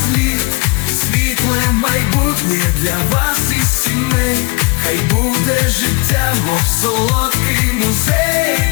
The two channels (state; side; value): quieter; right; 28.3 dB